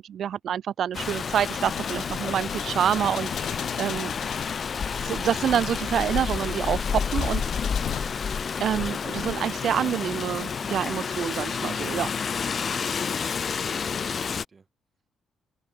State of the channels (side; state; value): both; normal; correlation 0.71